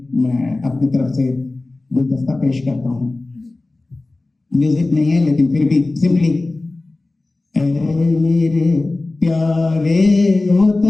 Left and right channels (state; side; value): quieter; right; 3.1 dB